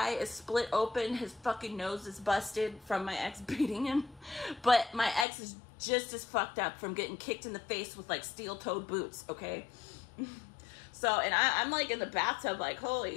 is split open. His fucking nose is busted from my ex beating him. But my ex is just as fucked up from getting kicked in the face with like steel-toed boots, okay? So, and I'm like in the bathtub like,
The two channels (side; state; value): right; drops out; at 5.2 s